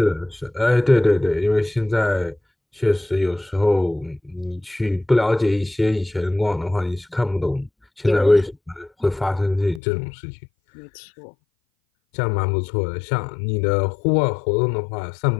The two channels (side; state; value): right; drops out; at 9.8 s